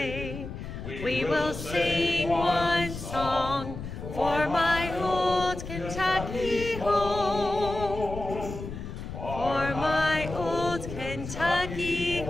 We will sing one song for my old Kentucky home. For my old Kentucky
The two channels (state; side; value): noise; left; rumble, 9 dB below the sound